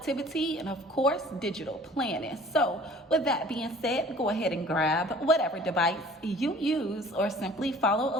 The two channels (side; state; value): both; normal; correlation 0.49